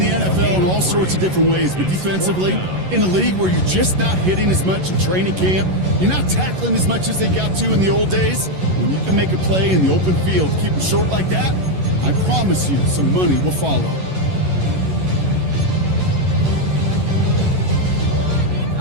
NFL in all sorts of different ways, but defensively, in a league where you're just not hitting as much in training camp, you're not tackling as much as they got to in the old days, when you can make a play in the open field, keep them short like that, I promise you some money will follow.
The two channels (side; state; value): left; late; 11 ms